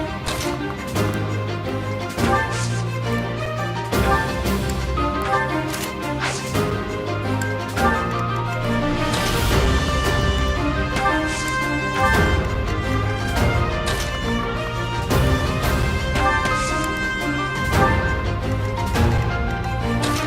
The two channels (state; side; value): identical; both; correlation 1.00